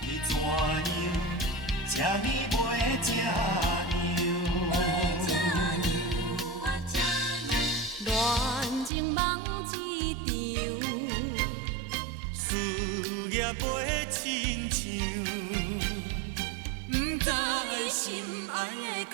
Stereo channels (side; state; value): left; drops out; at 8.9 s